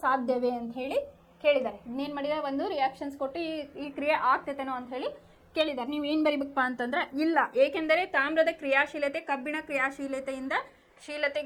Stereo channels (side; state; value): both; identical; correlation 1.00